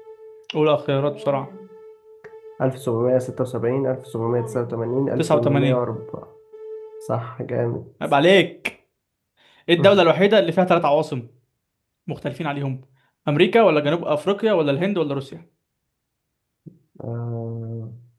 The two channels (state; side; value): identical; both; correlation 1.00